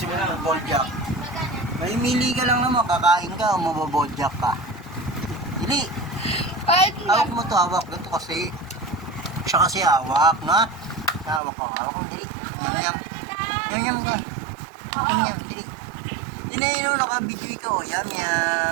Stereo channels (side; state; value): left; drops out; at 11.4 s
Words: mo na mag-boljak? May mili ka lang naman, kakain ka o mababoljak ka. Dili. Hawak mo to, hawak. Ganito kasi. Siya kasi hawak, na? Hawak mo, dili. Yum ka. Yum, dili. Dinayin mo, naka-video ka o. Yum.